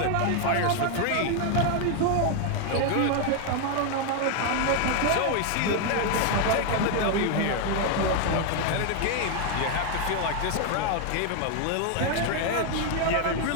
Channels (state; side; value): different; both; correlation 0.01